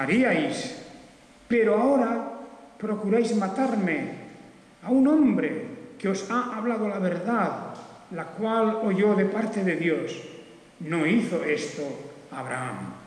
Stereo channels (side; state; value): both; identical; correlation 1.00